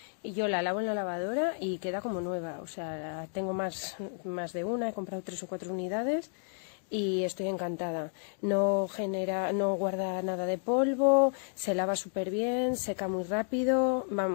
y yo la lavo en la lavadora y queda como nueva. O sea, tengo más de una, he comprado 3 o 4 unidades y estoy encantada. No guarda nada de polvo, se lava súper bien, seca muy rápido.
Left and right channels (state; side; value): silent; right; 57 dB below the other